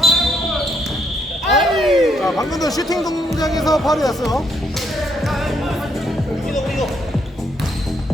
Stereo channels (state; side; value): normal; both; correlation 0.73